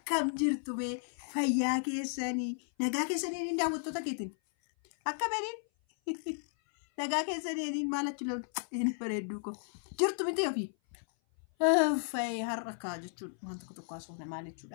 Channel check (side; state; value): right; silent; 55 dB below the other